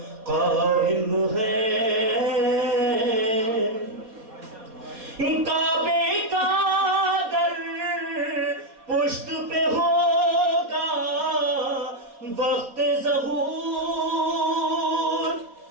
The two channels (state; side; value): late; left; 4.2 ms